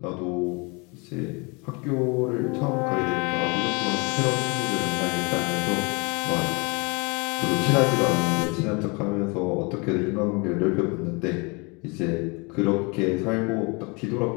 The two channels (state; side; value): quieter; right; 29.8 dB